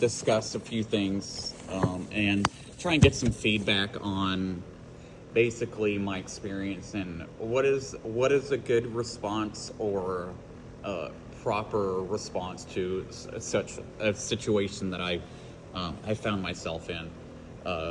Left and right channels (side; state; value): both; identical; correlation 1.00